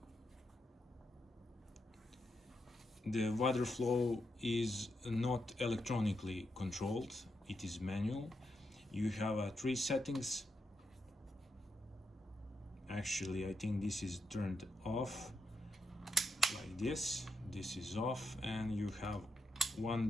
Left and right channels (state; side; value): normal; both; correlation 0.84